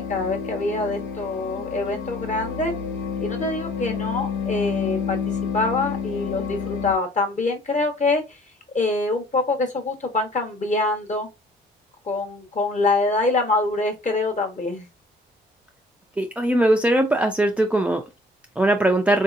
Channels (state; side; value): normal; both; correlation 0.55